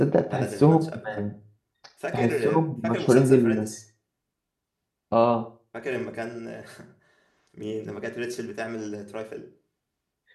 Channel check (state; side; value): identical; both; correlation 1.00